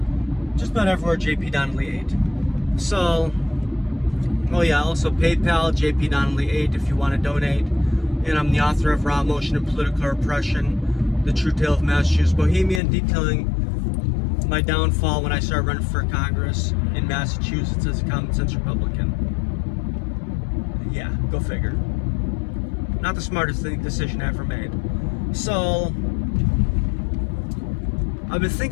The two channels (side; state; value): right; drops out; at 12.8 s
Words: about everywhere, JP Donnelly 8. So, also PayPal, JP Donnelly 8 if you want to donate. And I'm the author of Emotion and Political Repression, The True Tale of Massachusetts Bohemian, detailing my downfall when I started running for Congress in Massachusetts as a commonsense Republican. Yeah, go figure. Not the smartest decision I ever made. So, I've been